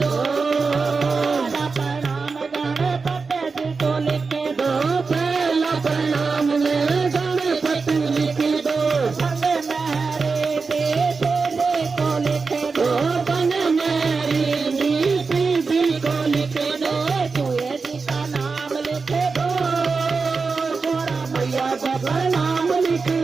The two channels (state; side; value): quieter; left; 4.6 dB